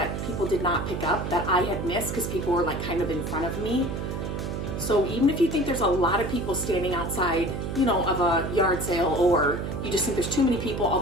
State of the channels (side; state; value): right; noise; hum, 4 dB below the sound